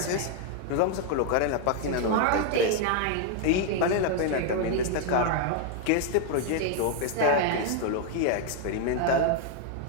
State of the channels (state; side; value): different; both; correlation 0.00